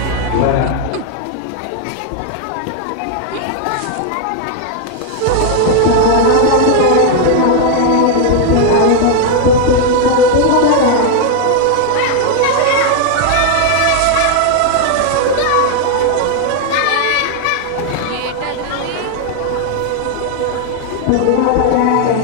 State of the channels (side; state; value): both; different; correlation 0.00